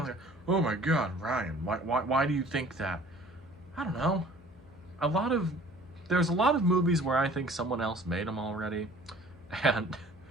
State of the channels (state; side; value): noise; left; hum, 24 dB below the sound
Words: like, oh my god, Ryan, why do you think that? I don't know. A lot of, there's a lot of movies where I think someone else made them already, and